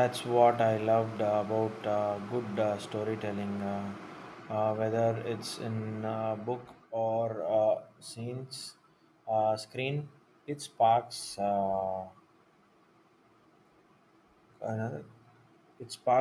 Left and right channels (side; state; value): both; identical; correlation 1.00